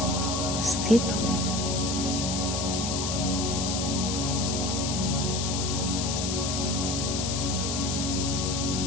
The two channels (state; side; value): noise; left; hiss, 2 dB below the sound